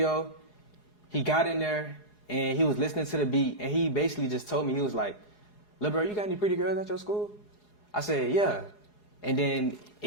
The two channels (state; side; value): late; right; 4.8 ms